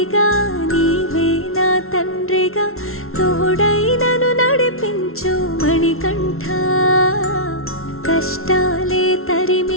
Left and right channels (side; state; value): right; late; 0.62 ms